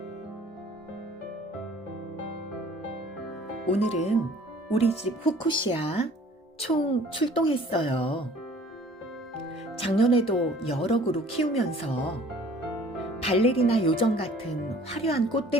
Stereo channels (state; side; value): normal; both; correlation 0.52